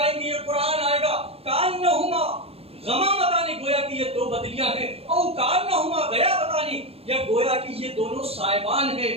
گی، یہ قرآن آئے گا، کانہما غمامتان، گویا کہ یہ دو بدلیاں ہیں، او کانہما غیابتان، یا گویا کہ یہ دونوں سائبان ہیں.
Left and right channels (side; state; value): left; late; 0.29 ms